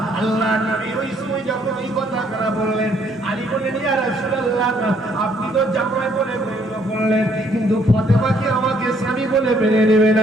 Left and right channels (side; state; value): both; normal; correlation 0.66